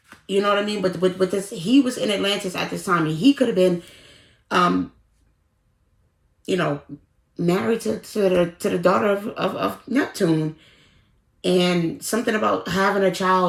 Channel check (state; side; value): identical; both; correlation 1.00